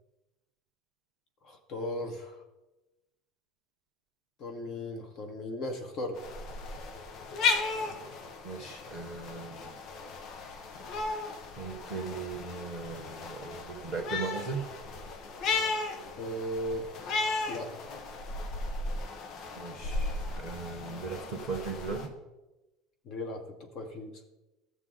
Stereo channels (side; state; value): both; normal; correlation 0.37